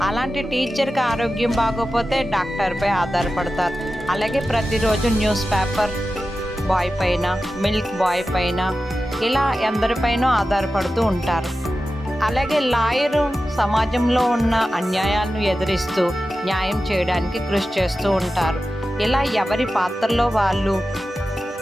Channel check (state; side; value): normal; both; correlation 0.93